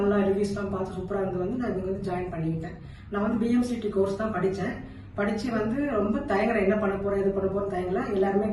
ரிவ்யூஸ்லாம் பார்த்து சூப்பராக இருந்து வந்து நான் இங்கே வந்து ஜாயின் பண்ணிக்கிட்டேன். நான் வந்து பிஎம்சிடி கோர்ஸ் தான் படித்தேன். படித்து வந்து ரொம்ப தயங்கலை, என்ன பண்ண போகிறேன் எது பண்ண போகிறேன் தயங்கலை. எல்லாருமே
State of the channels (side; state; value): both; identical; correlation 1.00